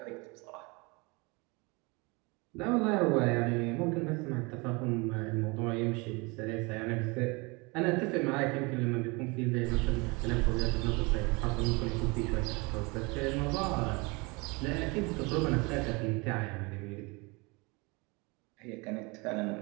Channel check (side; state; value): left; quieter; 27.2 dB